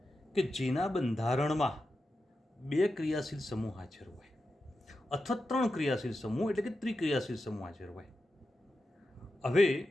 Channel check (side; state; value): both; normal; correlation 0.90